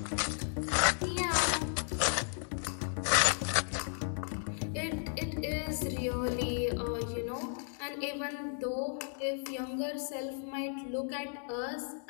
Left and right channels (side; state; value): right; silent; 55 dB below the other